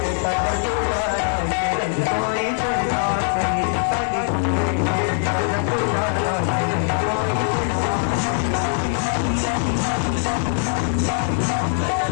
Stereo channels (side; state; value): right; silent; digital silence